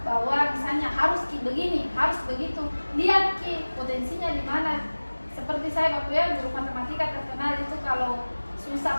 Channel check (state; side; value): inverted; both; correlation -1.00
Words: bahwa misalnya harus begini, harus begitu. Lihat Ki potensinya di mana. Seperti saya Bapak ya, guru matematika terkenal itu kalau susah